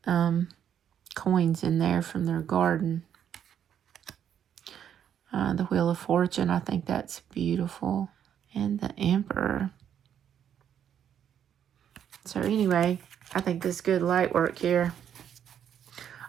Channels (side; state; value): left; quieter; 9.2 dB